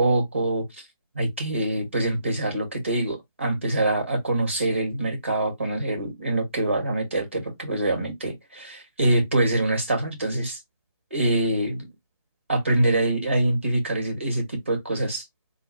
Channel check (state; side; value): inverted; both; correlation -0.76